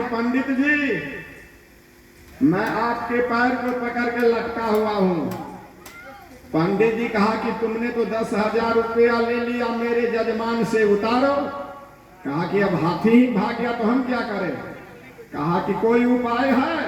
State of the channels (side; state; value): both; identical; correlation 1.00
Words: पंडित जी, मैं आपके पैर को पकड़ के लटका हुआ हूं। पंडित जी कहा कि तुमने तो 10,000 रुपया ले लिया मेरे जजमान से, उतारो। कहा कि अब हाथी ही भाग गया तो हम क्या करें। कहा कि कोई उपाय है।